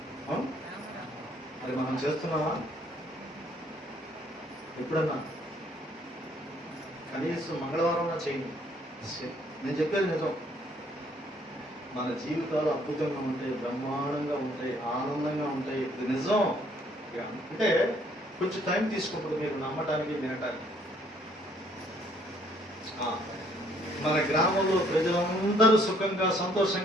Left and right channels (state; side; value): normal; both; correlation 0.64